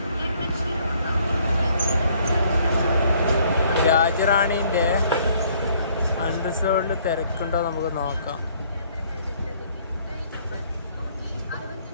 രാജറാണീൻ്റെ അൺറിസർവ്ഡിൽ തിരക്കുണ്ടോ നമുക്ക് നോക്കാം.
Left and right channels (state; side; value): inverted; both; correlation -0.62